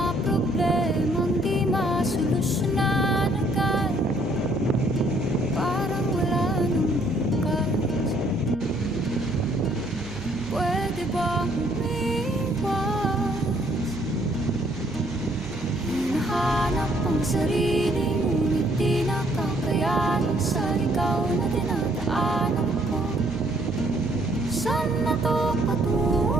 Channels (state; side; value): noise; right; hum, 16 dB below the sound